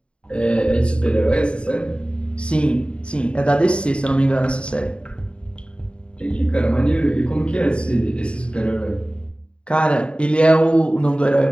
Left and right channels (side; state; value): right; late; 0.056 ms